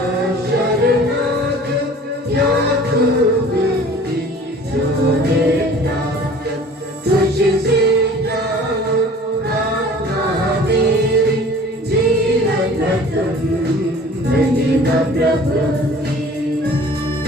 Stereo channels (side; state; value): both; normal; correlation 0.47